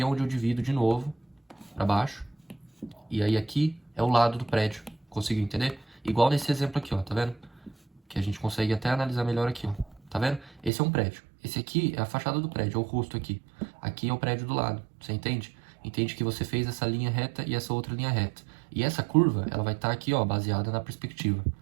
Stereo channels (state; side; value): drops out; left; at 10.7 s